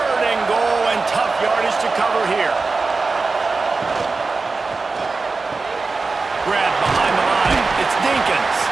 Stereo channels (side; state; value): left; quieter; 4.0 dB